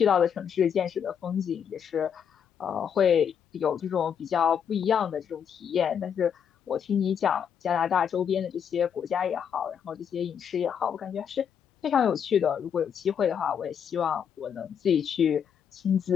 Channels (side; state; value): right; quieter; 7.9 dB